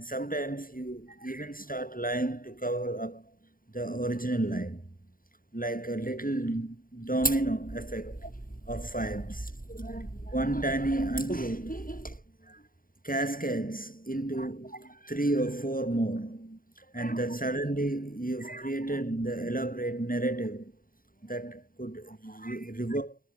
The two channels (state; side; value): late; right; 0.41 ms